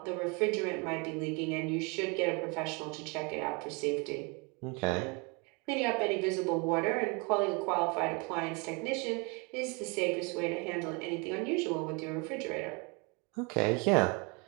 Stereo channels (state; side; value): quieter; left; 30.9 dB